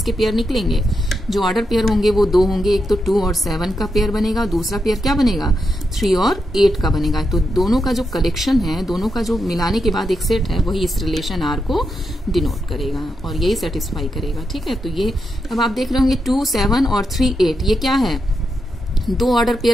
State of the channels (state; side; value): normal; both; correlation 0.85